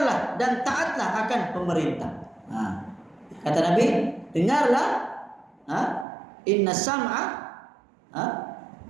dan taatlah akan pemerintah. Kata Nabi, dengarlah, inna sam'a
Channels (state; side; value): drops out; left; at 6.1 s